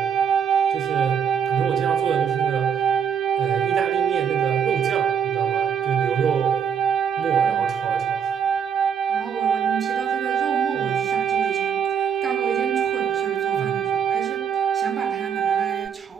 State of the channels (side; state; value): left; quieter; 7.5 dB